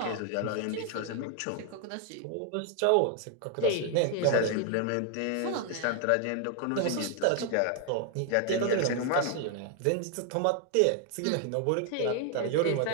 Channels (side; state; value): both; different; correlation 0.00